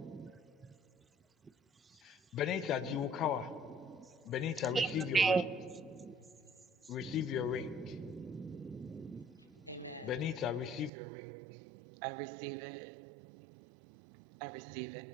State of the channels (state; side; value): drops out; left; at 10.9 s